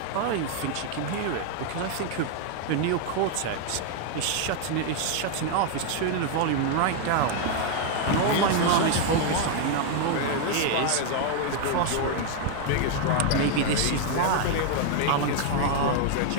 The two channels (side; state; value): both; different; correlation 0.00